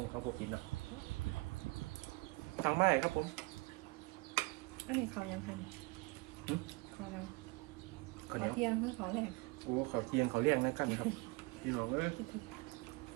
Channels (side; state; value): left; quieter; 25.8 dB